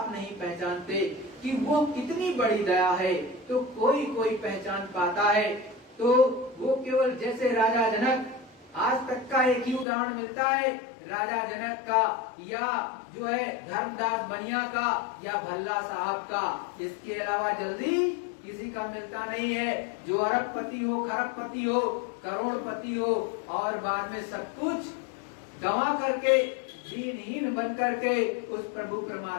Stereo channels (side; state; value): right; drops out; at 9.9 s